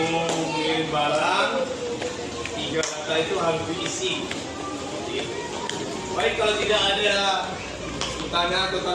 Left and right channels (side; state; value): both; identical; correlation 1.00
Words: mengirim barang, 3 data itu harus diisi. Baik, kalau tidak ada pertanyaan atau